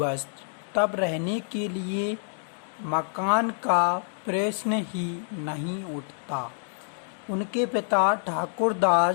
तब रहने के लिए मकान का प्रश्न ही नहीं उठता। उनके पिता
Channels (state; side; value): silent; right; digital silence